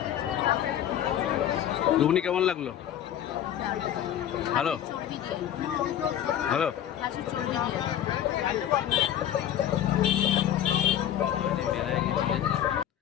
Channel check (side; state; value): right; quieter; 10.8 dB